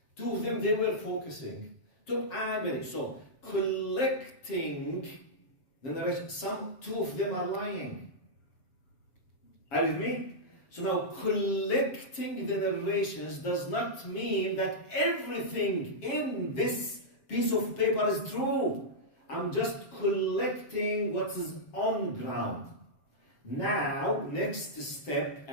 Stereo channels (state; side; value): late; right; 7.4 ms